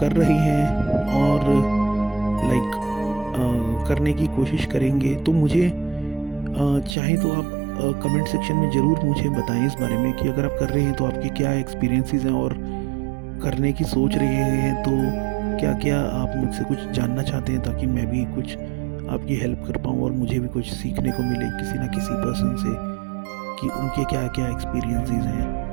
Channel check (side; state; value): left; drops out; at 7.0 s